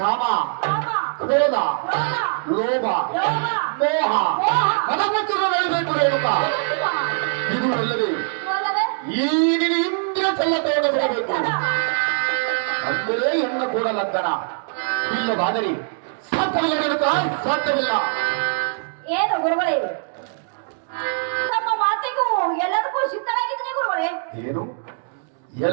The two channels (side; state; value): left; silent; digital silence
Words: ಕ್ರೋಧ, ಲೋಭ, ಮೋಹ ಮನಪುತ್ರಬೇಕು ರೇಣುಕ. ಇದು ಅಲ್ಲದೆ ಈಗಿನ ಇಂದ್ರಿಯ ಚಲ್ಲತೆಯನ್ನು ಬಿಡಬೇಕು. ಅಂದರೆ ಹೆಣ್ಣ ಕೂಡ ಲಗ್ನ ಇಲ್ಲವಾದರೆ ಸಾಧ್ಯವಿಲ್ಲ. ಏನು ಗುರುಗಳೇ? ನಮ್ಮ ಮಾತಿಗೂ ಎಲ್ಲದಕ್ಕೂ ಸಿದ್ಧರಾಗಿದ್ದೀನಿ ಗುರುಗಳೇ. ಏನು